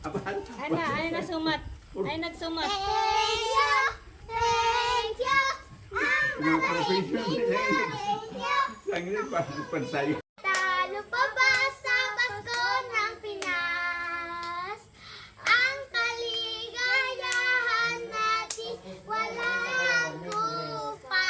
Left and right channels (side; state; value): both; identical; correlation 1.00